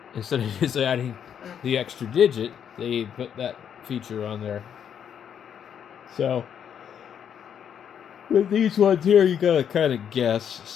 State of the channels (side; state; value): right; quieter; 8.5 dB